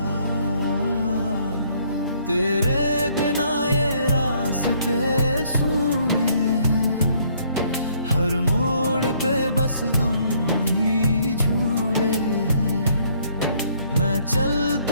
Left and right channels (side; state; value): both; inverted; correlation -0.65